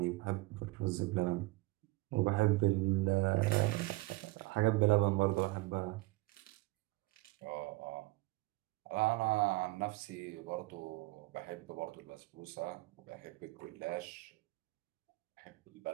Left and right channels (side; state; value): left; quieter; 21.7 dB